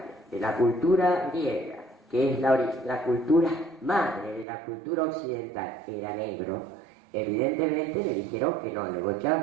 de la cultura griega, que es la cultura madre de la cultura occidental, era negro. Evidentemente le dijeron que no, le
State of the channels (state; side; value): drops out; left; at 4.5 s